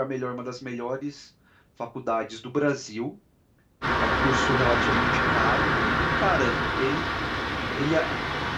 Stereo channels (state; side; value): identical; both; correlation 1.00